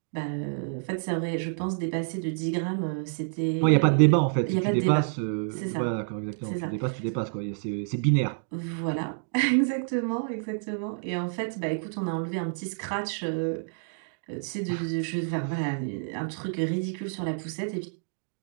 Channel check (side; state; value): left; silent; digital silence